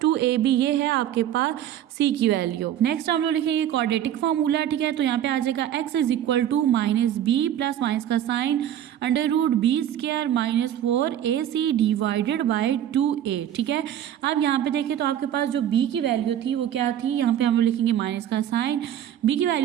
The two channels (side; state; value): left; quieter; 10.8 dB